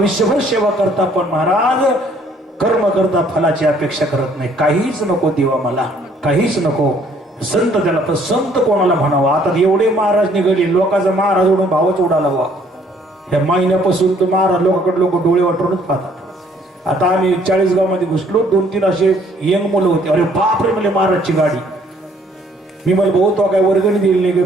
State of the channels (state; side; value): normal; both; correlation 0.62